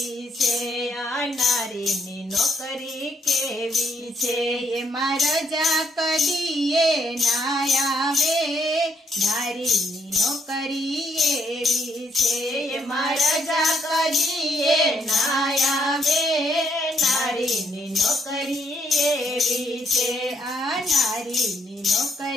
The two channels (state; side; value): normal; both; correlation 0.72